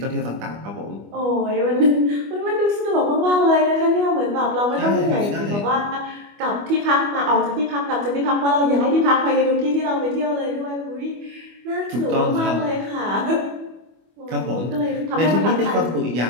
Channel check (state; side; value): late; left; 25 ms